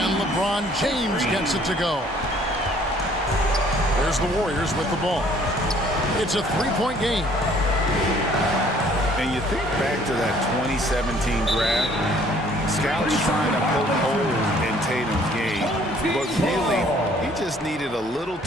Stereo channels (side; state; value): both; normal; correlation 0.59